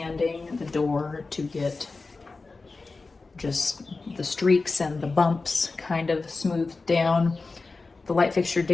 the door to get just the streaks and the bumps kind of smoothed down. The light fixture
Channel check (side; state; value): right; quieter; 3.8 dB